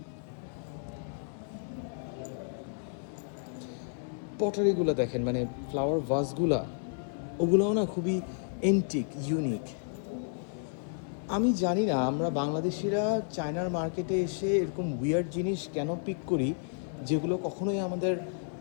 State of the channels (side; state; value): right; silent; 57 dB below the other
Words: পটারিগুলো দেখেন, মানে ফ্লাওয়ার ভাসগুলা, ওগুলোও না খুবই এন্টিক, ইউনিক। আমি জানি না আমরা বাংলাদেশিরা চায়নার মার্কেটে এসে এরকম উইয়ার্ড জিনিস কেন পিক করি, যেগুলো কখনোই আমাদের